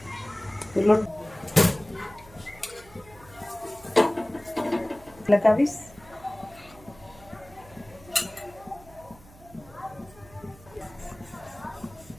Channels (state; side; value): noise; right; hum, 22 dB below the sound